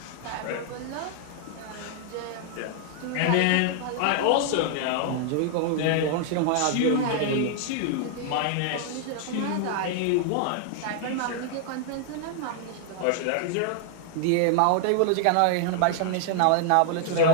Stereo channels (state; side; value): different; both; correlation 0.00